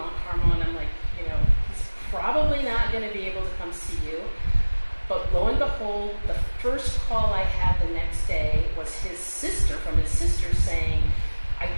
Carmel, and I'm like, he's probably not going to be able to come see you. But lo and behold, the first call I had the next day was his sister, from his sister, saying, "I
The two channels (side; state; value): both; inverted; correlation -1.00